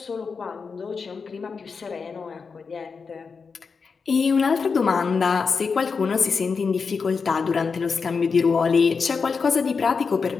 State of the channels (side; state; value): right; quieter; 5.2 dB